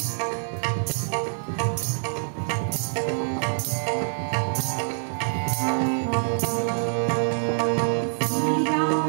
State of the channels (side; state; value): left; silent; 57 dB below the other